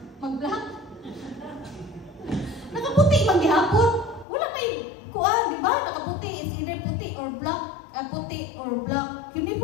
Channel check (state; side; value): drops out; right; at 4.2 s